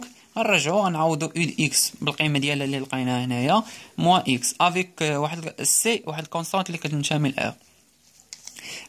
غنرجعو غنعوضو u د x بالقيمه ديالها اللي لقيناها هنايا موان x افيك واحد سي واحد كونستانت اللي كتنتمي ل r.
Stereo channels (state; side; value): identical; both; correlation 1.00